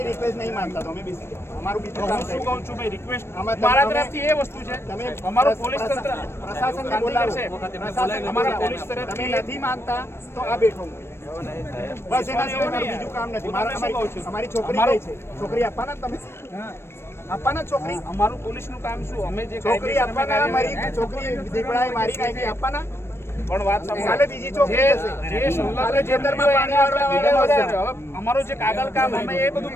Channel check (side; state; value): right; late; 0.12 ms